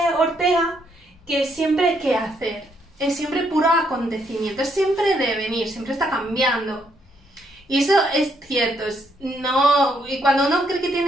Ortega, que siempre hay que hacer, es siempre puro acontecimiento, es siempre devenir, siempre está cambiando. Y eso es cierto, y cuando uno cree que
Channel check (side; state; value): both; normal; correlation 0.73